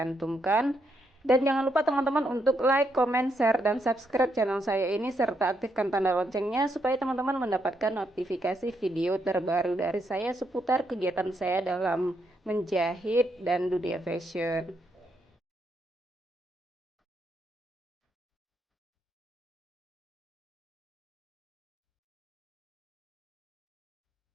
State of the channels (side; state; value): both; normal; correlation 0.78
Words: Dan jangan lupa teman-teman untuk like, comment, share, dan subscribe channel saya ini serta aktifkan tanda loncengnya supaya teman-teman mendapatkan notifikasi video terbaru dari saya seputar kegiatan saya dalam menjahit dan dunia fashion.